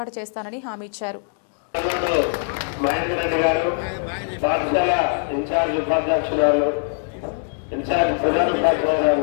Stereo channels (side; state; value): right; silent; digital silence